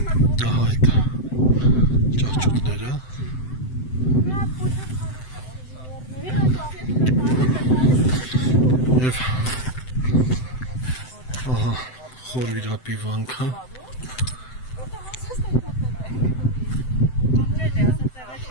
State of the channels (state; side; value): late; right; 7.8 ms